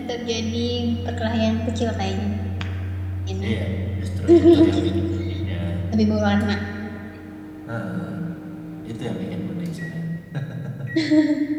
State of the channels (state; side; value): identical; both; correlation 1.00